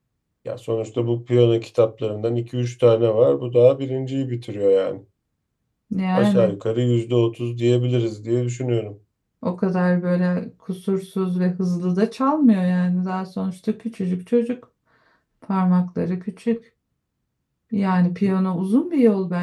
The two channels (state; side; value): identical; both; correlation 1.00